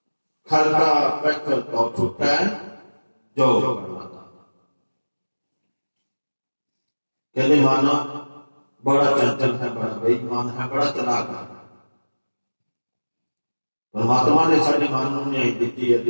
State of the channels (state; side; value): inverted; both; correlation -1.00